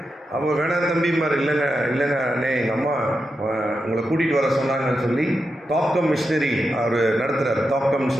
அப்போ வேணாம் தம்பிமார், இல்லைங்க அண்ணே, எங்கள் அம்மா உங்களை கூட்டிகிட்டு வர சொன்னாங்கன்னு சொல்லி தாக்கம் மிஷினரி அவர் நடத்துகிறார். தாக்கம்னு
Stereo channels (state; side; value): normal; both; correlation 0.88